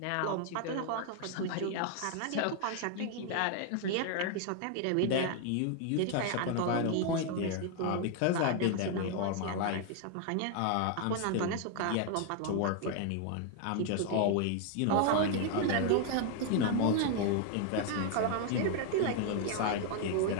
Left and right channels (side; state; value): both; different; correlation 0.00